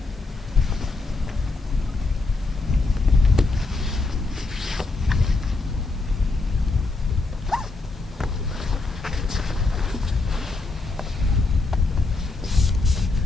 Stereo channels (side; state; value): right; quieter; 3.5 dB